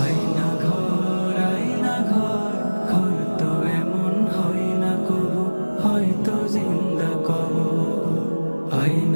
আয়না ঘর, আয়না ঘর, ঘর তো এমন হয় না কবু, হয়তো জিন্দা কবর।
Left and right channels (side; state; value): both; inverted; correlation -1.00